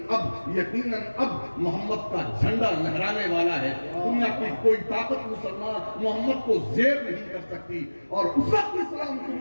اب محمد کا جھنڈا لہرانے والا ہے. دنیا کی کوئی طاقت مسلمان محمد کو زیر نہیں کر سکتی. اور اس وقت اسلام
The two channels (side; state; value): both; inverted; correlation -1.00